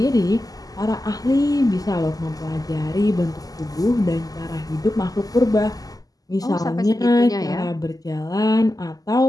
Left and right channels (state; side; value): late; right; 0.17 ms